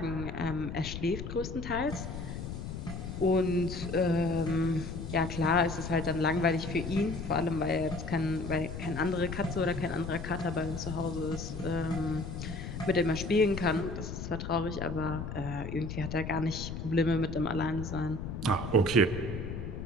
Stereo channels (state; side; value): noise; left; rumble, 7 dB below the sound